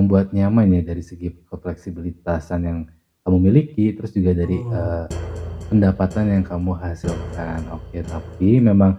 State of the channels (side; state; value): both; identical; correlation 1.00